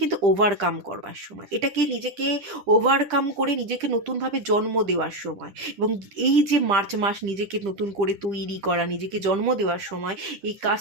কিন্তু ওভারকাম করবার সময়, এটাকে নিজেকে ওভারকাম করে নিজেকে নতুনভাবে জন্ম দেওয়ার সময়। এবং এই যে মার্চ মাস নিজেকে নতুন করে তৈরি করা, নিজেকে জন্ম দেওয়ার সময়, এই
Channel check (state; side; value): late; left; 10 ms